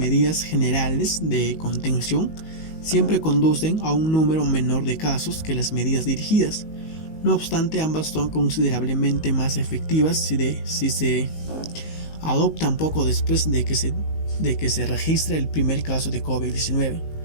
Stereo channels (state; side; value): late; right; 19 ms